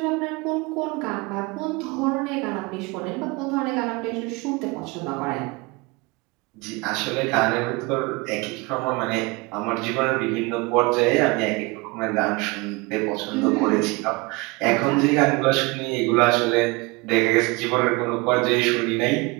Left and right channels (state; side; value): quieter; left; 25.8 dB